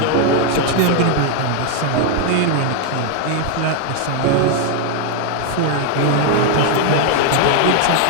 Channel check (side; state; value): both; different; correlation 0.00